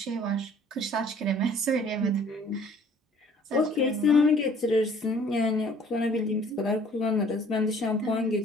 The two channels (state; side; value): normal; both; correlation 0.55